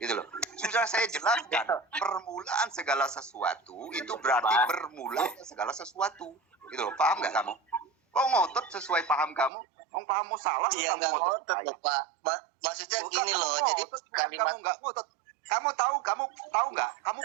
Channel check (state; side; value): drops out; left; at 9.5 s